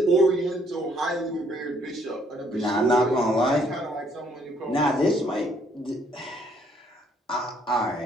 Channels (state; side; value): normal; both; correlation 0.66